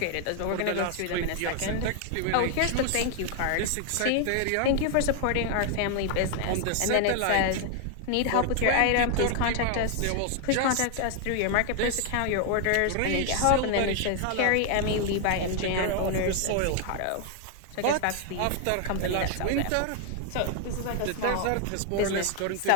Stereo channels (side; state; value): both; different; correlation 0.00